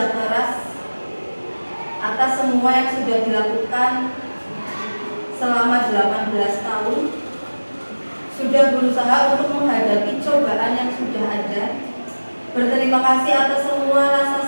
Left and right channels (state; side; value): inverted; both; correlation -1.00